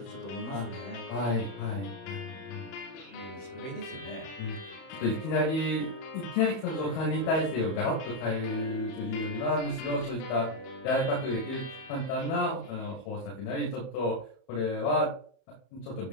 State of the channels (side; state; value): right; late; 31 ms